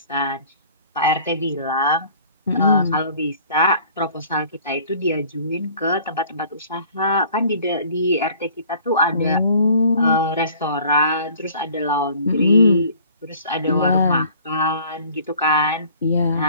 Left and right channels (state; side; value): inverted; both; correlation -0.52